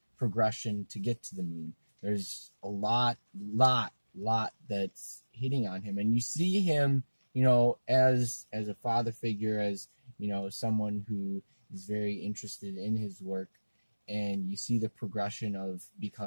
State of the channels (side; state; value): both; inverted; correlation -1.00